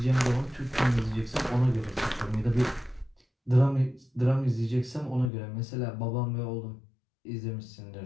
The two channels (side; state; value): right; drops out; at 5.3 s